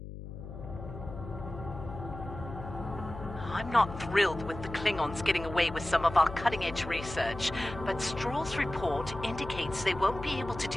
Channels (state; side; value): noise; left; hum, 10 dB below the sound